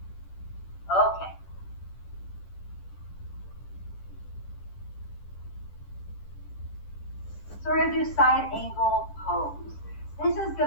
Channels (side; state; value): right; late; 10 ms